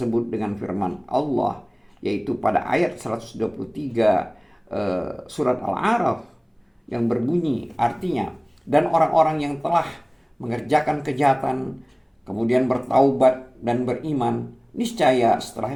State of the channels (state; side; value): identical; both; correlation 1.00